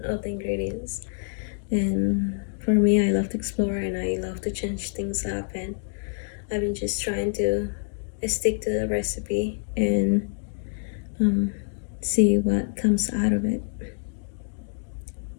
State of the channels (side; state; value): right; silent; digital silence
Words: of the ingredients. And for me, I love to explore and I love to change things up, and I've been just trying to stick to the recipe and see what comes out of it.